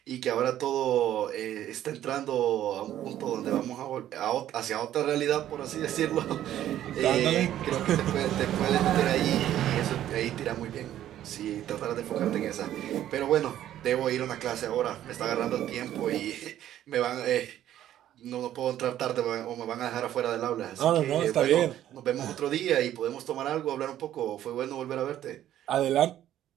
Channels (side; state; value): left; quieter; 12.0 dB